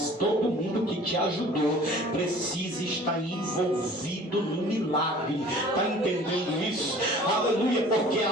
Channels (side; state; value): both; normal; correlation 0.48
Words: Todo mundo que te ajudou precisa estar envolvido no milagre. Está entendendo isso? Aleluia, porque a